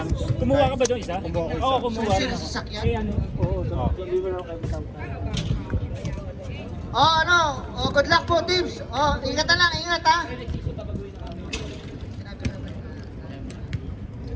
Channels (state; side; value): identical; both; correlation 1.00